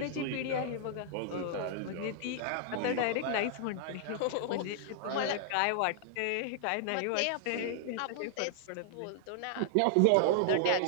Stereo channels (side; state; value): both; different; correlation -0.01